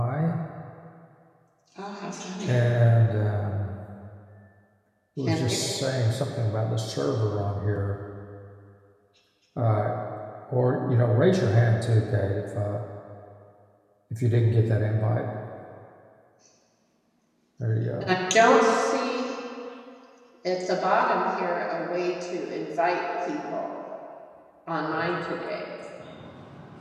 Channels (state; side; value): identical; both; correlation 1.00